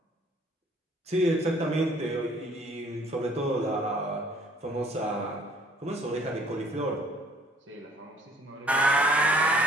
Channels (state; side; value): normal; both; correlation 0.59